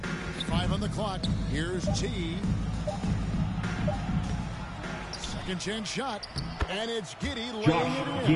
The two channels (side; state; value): both; identical; correlation 1.00